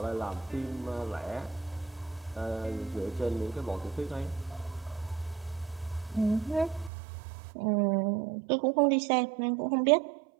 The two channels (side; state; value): left; drops out; at 6.9 s